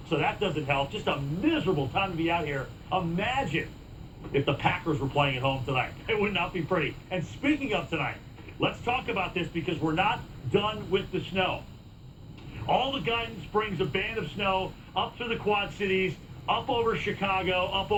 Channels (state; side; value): identical; both; correlation 1.00